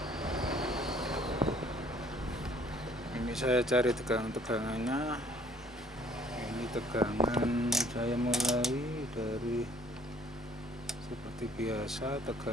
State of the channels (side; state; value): both; normal; correlation 0.59